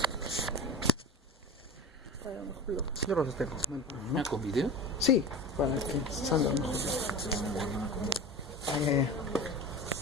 Yo los tengo. ¿Ah, con video? Sí, para que salga mejor.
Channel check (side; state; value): both; normal; correlation 0.30